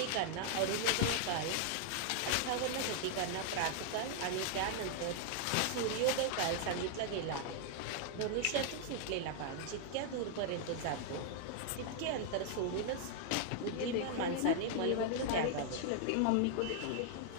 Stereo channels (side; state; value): both; different; correlation 0.00